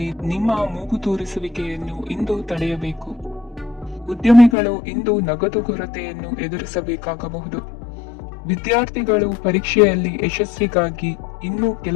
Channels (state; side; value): drops out; right; at 4.5 s